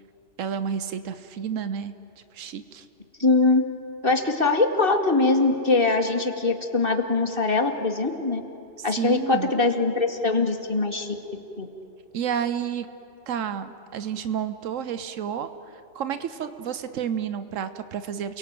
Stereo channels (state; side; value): late; left; 3.7 ms